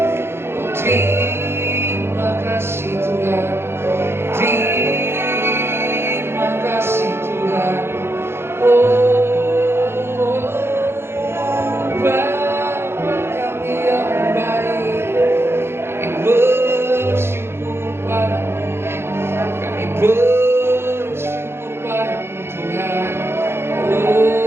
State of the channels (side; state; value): left; late; 0.12 ms